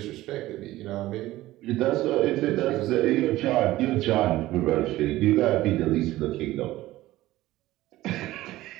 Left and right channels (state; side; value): quieter; left; 16.5 dB